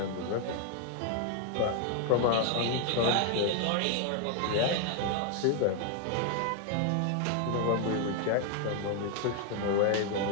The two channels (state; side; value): different; both; correlation 0.01